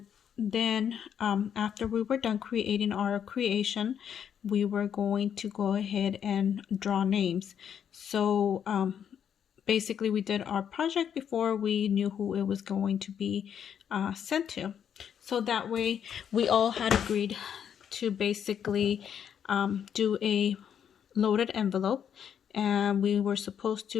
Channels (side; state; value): right; quieter; 8.5 dB